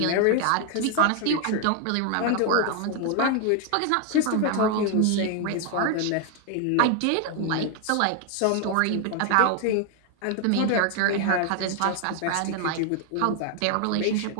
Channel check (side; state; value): both; different; correlation 0.00